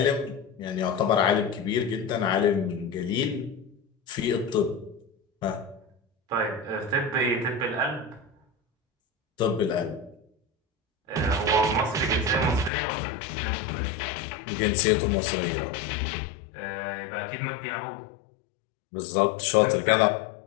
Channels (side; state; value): right; drops out; at 12.7 s